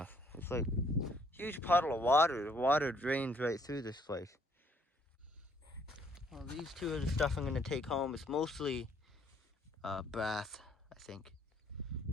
It's like a huge puddle of water. The water drains right through this place. Well, these two are the stuff I'm going to take home. It's mostly brass, I think.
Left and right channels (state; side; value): normal; both; correlation 0.66